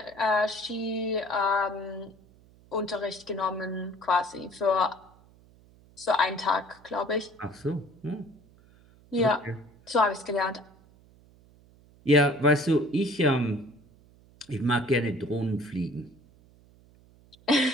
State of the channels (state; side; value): noise; right; hum, 27 dB below the sound